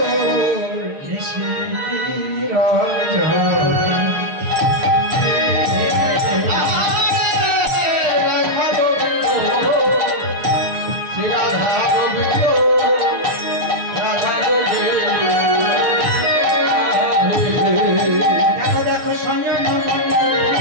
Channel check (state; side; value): late; left; 6.6 ms